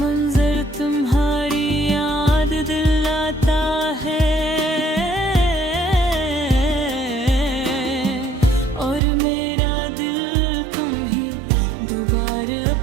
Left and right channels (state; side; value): drops out; left; at 9.0 s